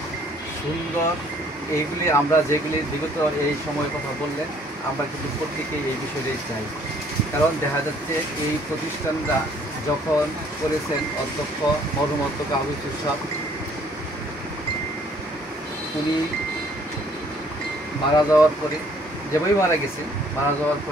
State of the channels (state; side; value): normal; both; correlation 0.61